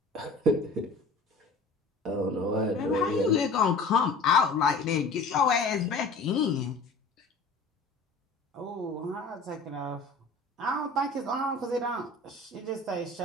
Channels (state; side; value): quieter; right; 3.4 dB